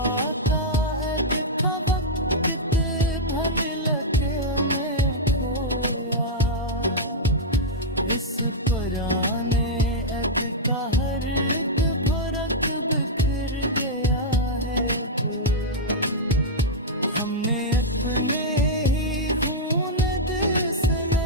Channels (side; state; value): both; normal; correlation -0.06